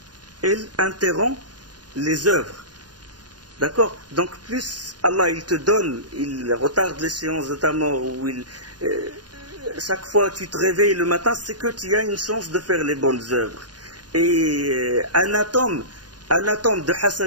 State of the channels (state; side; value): late; left; 0.70 ms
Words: interrompt les œuvres. D'accord? Donc plus Allah il te donne, il retarde l'échéance de ta mort, ou chaque fois que tu te réveilles le matin, c'est que tu as une chance de faire les bonnes œuvres. Et un atome de